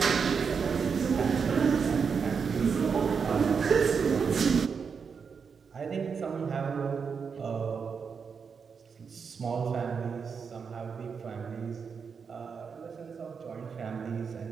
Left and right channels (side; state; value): left; quieter; 6.0 dB